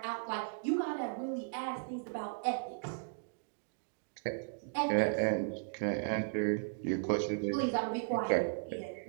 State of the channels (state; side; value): silent; left; digital silence